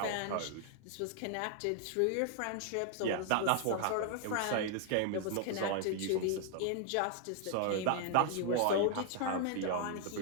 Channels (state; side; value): different; both; correlation 0.00